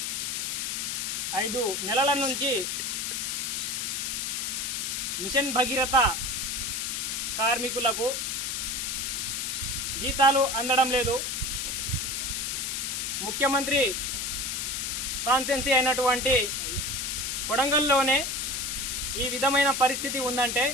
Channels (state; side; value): noise; left; hiss, 1 dB below the sound